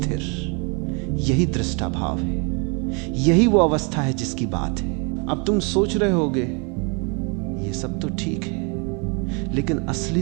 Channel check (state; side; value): quieter; left; 33.5 dB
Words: यही दृष्टा भाव है, यही वो अवस्था है जिसकी बात है। अब तुम सोच रहे होगे ये सब तो ठीक है, लेकिन असली